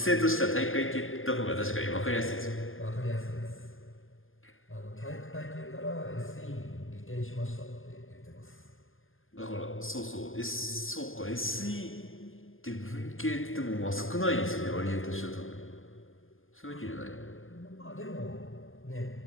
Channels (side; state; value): right; late; 0.59 ms